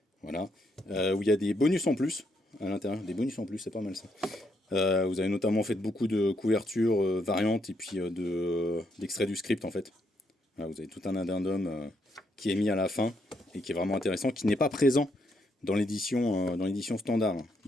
voilà, où il y a des bonus en plus à l'intérieur, des bonus en plus, c'est pas mal ça. Vous avez notamment fait beaucoup de couvertures variantes et puis d'extraits du script en fait. Voilà, vous avez tout un addendum qui est mis à la fin et qui est vraiment intéressant, qui n'est pas présent dans l'édition standard.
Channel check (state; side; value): normal; both; correlation 0.76